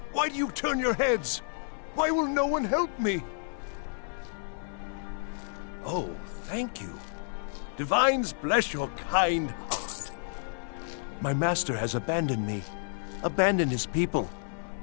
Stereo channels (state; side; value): silent; right; 58 dB below the other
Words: Why do you turn your heads? Why will no one help me? Oh, thank you. Divines bless your kind heart. My master has abandoned me, abandoned his people,